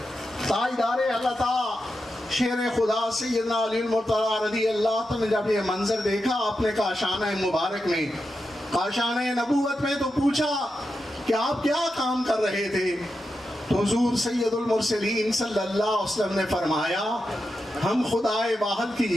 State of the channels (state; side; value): normal; both; correlation 0.88